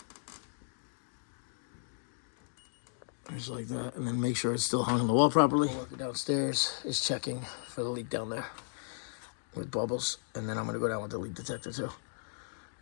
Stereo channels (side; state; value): right; silent; digital silence